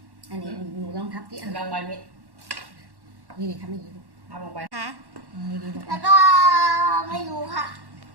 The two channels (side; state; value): left; late; 1.1 ms